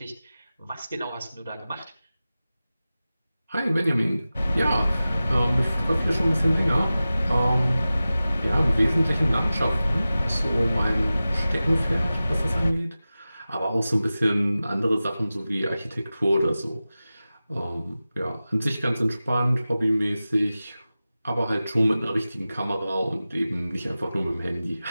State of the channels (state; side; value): inverted; both; correlation -0.95